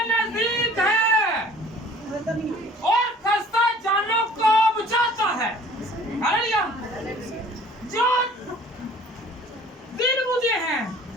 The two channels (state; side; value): normal; both; correlation 0.50